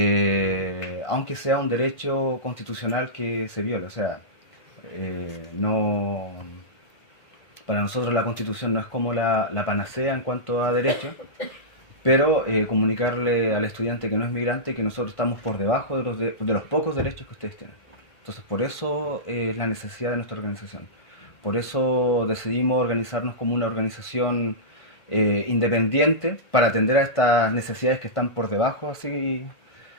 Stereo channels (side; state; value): right; late; 1.5 ms